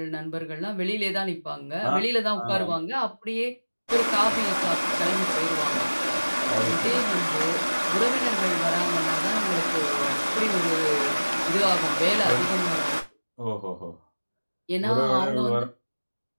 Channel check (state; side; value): inverted; both; correlation -1.00